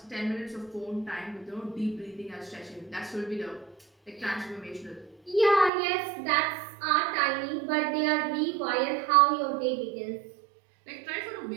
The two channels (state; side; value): drops out; left; at 5.7 s